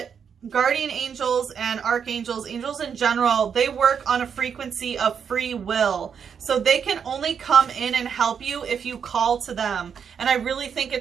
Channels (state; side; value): quieter; left; 7.2 dB